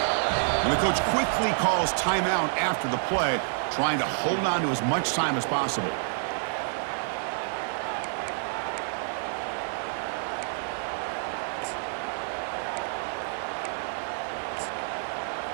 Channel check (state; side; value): silent; left; digital silence